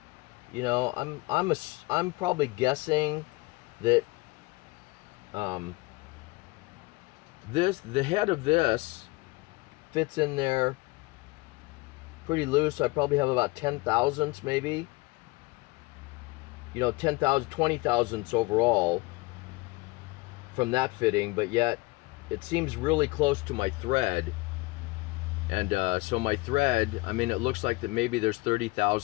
you know, I'm probably guessing that the head of this fits in there pretty loose. I probably have about 10 thousandths maybe. You know, 10,000, 20 thousandths overall from that fitting, but yet it seems really close to my thread. And so my thread, I mean, it looks like that maybe there's 30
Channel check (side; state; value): right; quieter; 23.8 dB